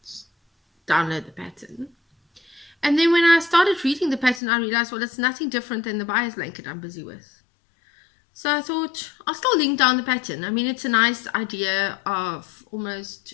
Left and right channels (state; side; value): drops out; right; at 4.4 s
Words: download the pattern. And then when I started reading the pattern, I realized, well, it's nothing different than the buyer's blanket I'm busy with. So I thought, I'll still link down the pattern. I mean, it's a nice idea of almost